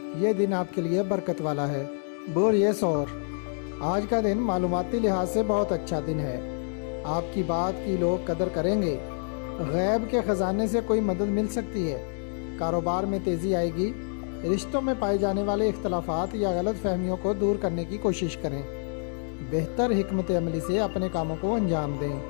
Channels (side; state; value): right; silent; digital silence